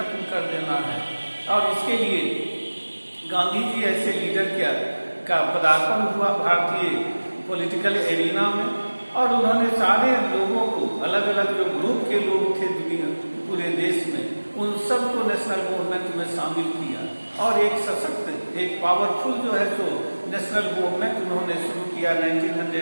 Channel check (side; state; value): both; inverted; correlation -1.00